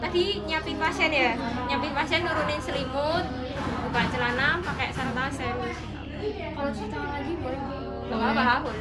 nyiapin pasien nurunin selimut, buka celana, pakai sarung tangan steril. Kalau cuci tangan lagi boleh? Nggak apa-apa,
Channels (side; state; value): both; identical; correlation 1.00